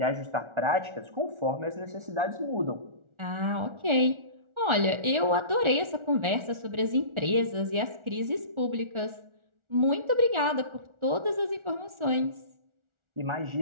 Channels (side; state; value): left; late; 1.4 ms